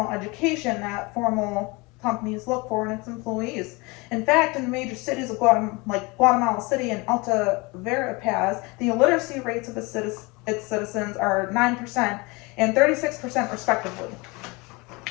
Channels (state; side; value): quieter; right; 26.0 dB